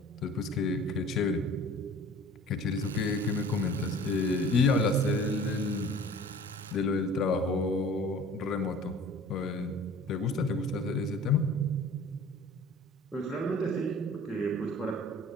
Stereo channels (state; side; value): normal; both; correlation 0.46